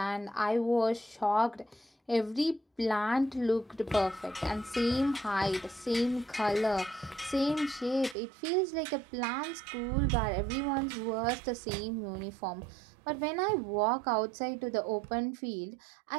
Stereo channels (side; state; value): left; drops out; at 8.2 s